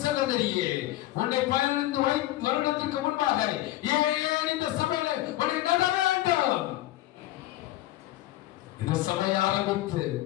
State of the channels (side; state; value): right; quieter; 15.9 dB